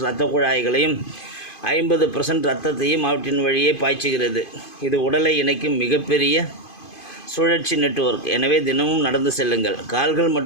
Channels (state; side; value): late; right; 2.5 ms